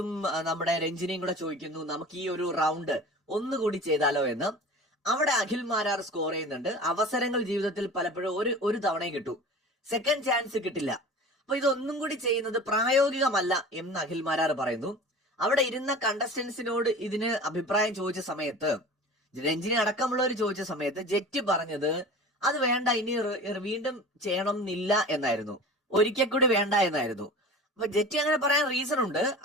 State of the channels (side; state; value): both; normal; correlation 0.38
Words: നമ്മുടെ രഞ്ജിനിയും കൂടെ ചോദിക്കുന്നു, നമുക്ക് ഈ ഒരു റൗണ്ട് ഒന്നുകൂടി ചെയ്താലോ എന്ന്. അവിടെ അഖിൽ മാരാർ സ്കോർ ചെയ്യുന്നുണ്ട്. അവസരങ്ങൾ ജീവിതത്തിൽ പലപ്പോഴും ഒരു തവണയും കിട്ടൂ, സെക്കൻഡ് ചാൻസ് കിട്ടില്ല. അപ്പൊ ഇതൊന്നും കൂടി ചെയ്യുന്നത് പ്രായോഗികമല്ല എന്ന് അഖിൽ മാരാർ പറയുന്നു. അവിടെ ഇരുന്ന കണ്ടസ്റ്റൻസിനോട് ഇതിന് അഭിപ്രായം ചോദിച്ച സമയത്ത്, രഞ്ജിനി അടക്കമുള്ളവർ ചോദിച്ച സമയത്ത് ജെറ്റി പറഞ്ഞത് അത് വേണ്ട, ഇനി വീണ്ടും ചെയ്യണം എന്നില്ല എന്നായിരുന്നു, ഒരിക്കൽ കൂടി വേണ്ട എന്നായിരുന്നു. അപ്പൊ ജെറ്റി അങ്ങനെ പറയാൻ റീസൺ ഉണ്ട്.